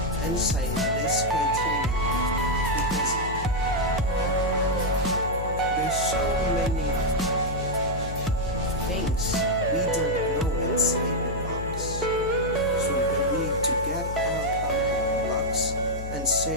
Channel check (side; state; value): left; noise; hum, 7 dB below the sound